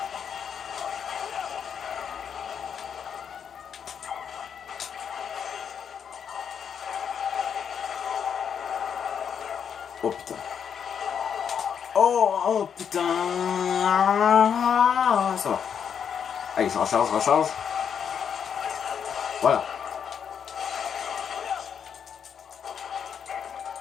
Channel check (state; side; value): quieter; right; 7.6 dB